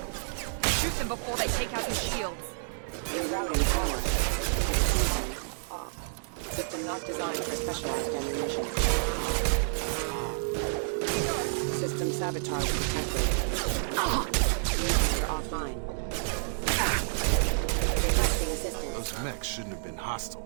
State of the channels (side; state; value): left; silent; digital silence